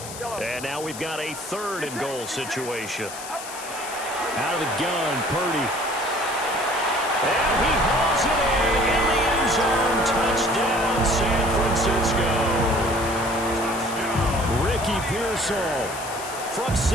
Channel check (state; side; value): noise; left; hiss, 12 dB below the sound